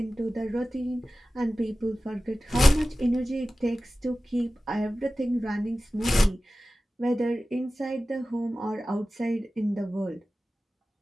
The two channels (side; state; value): both; normal; correlation 0.96